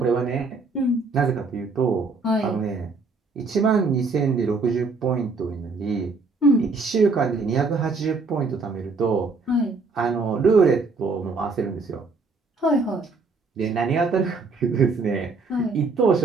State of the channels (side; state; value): left; quieter; 4.1 dB